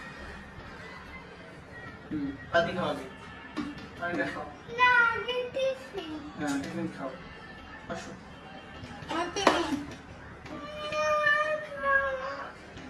পানি খাওয়া যায়, পানিটা খাও। হ্যাঁ, টিফিন খাও, আসো।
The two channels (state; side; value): identical; both; correlation 1.00